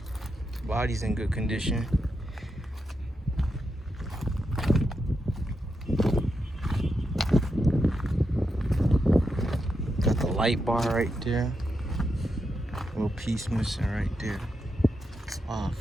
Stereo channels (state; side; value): normal; both; correlation 0.85